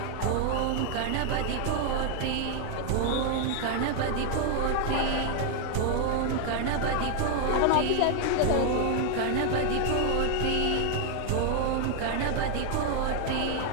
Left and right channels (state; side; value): different; both; correlation 0.00